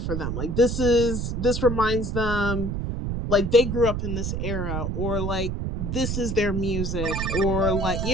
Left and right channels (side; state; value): right; noise; rumble, 2 dB below the sound